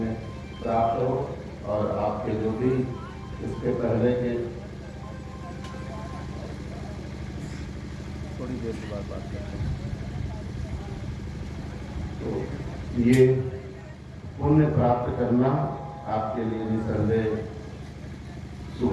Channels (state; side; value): identical; both; correlation 1.00